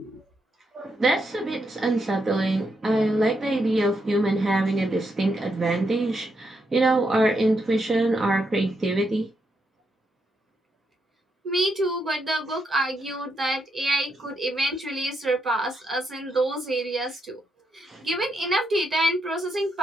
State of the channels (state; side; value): normal; both; correlation 0.80